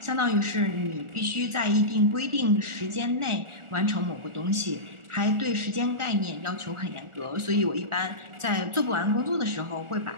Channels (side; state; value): left; late; 1.4 ms